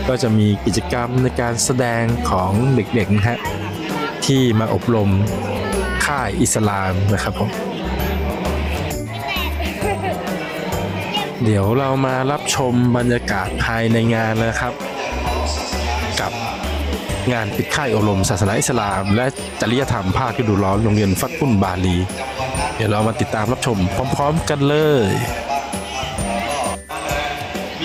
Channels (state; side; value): identical; both; correlation 1.00